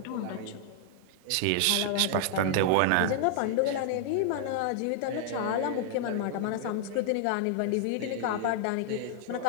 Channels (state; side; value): different; both; correlation -0.01